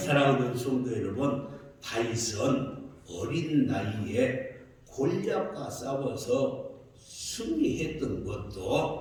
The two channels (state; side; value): identical; both; correlation 1.00